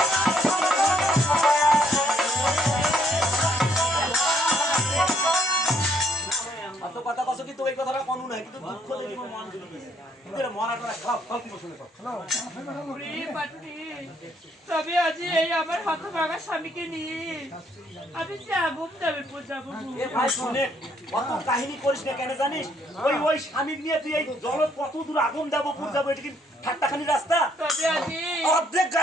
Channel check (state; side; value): normal; both; correlation 0.68